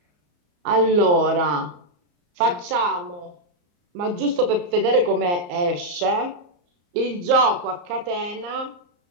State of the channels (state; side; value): late; left; 34 ms